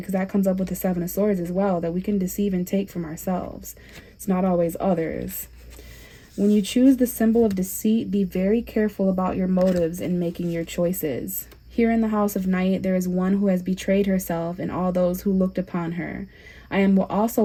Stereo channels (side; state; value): both; identical; correlation 1.00